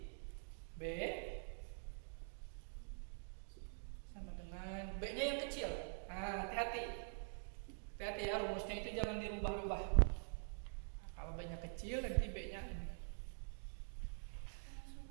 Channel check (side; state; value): left; silent; digital silence